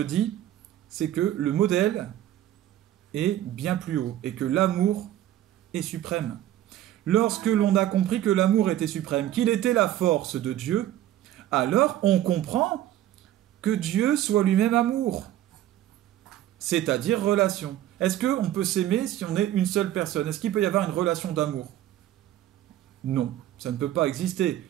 c'est que le modèle est bien plus haut et que l'amour est suprême. Lorsque l'on a compris que l'amour était suprême, qu'il était la force de Dieu, alors on comprend que Dieu soit lui-même amour, c'est-à-dire relation. Est-ce qu'on peut s'aimer si on est une seule personne? Est-ce qu'il peut y avoir une relation d'amour? Non, ça ne peut pas exister.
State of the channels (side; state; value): left; quieter; 12.8 dB